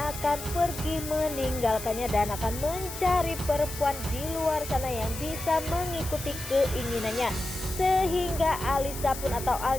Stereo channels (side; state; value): left; noise; hiss, 10 dB below the sound